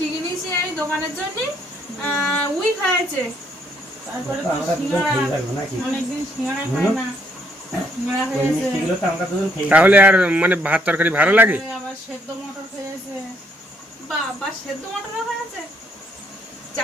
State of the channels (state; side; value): normal; both; correlation 0.70